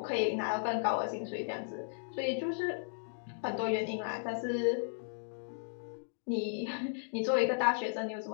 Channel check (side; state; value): right; silent; digital silence